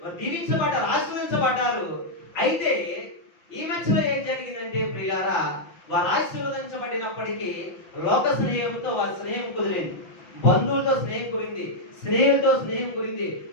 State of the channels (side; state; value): right; late; 6.0 ms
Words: వారు దీవించబడ్డారు, ఆశీర్వదించబడ్డారు. అయితే ఈ మధ్యలో ఏం జరిగిందంటే ప్రియులారా, వారు ఆశీర్వదించబడినప్పటికీ లోక స్నేహంతో వారి స్నేహం కుదిరింది, బంధువులతో స్నేహం కుదిరింది, స్నేహితులతో స్నేహం కుదిరింది.